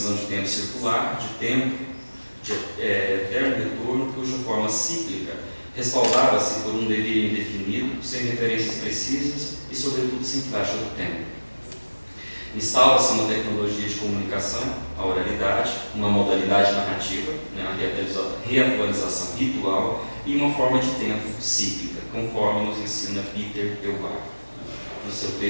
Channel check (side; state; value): both; inverted; correlation -1.00